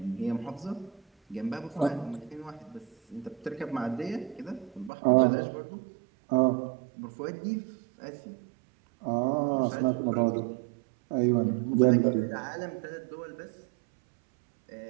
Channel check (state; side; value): drops out; left; at 4.9 s